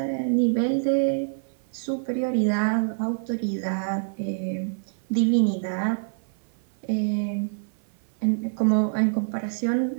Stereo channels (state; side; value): silent; left; 55 dB below the other